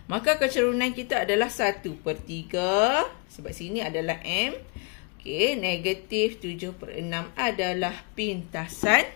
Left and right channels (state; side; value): quieter; right; 34.1 dB